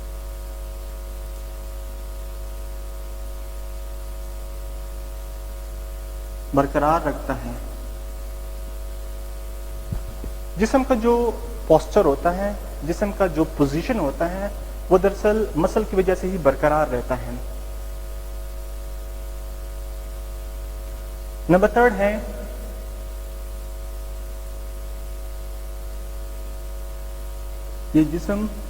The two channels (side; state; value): both; identical; correlation 1.00